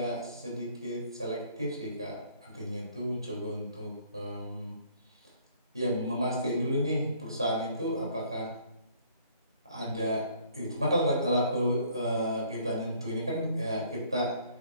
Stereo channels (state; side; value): inverted; both; correlation -0.59